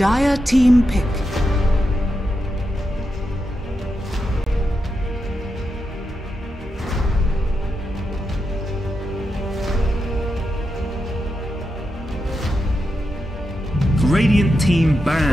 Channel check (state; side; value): normal; both; correlation 0.87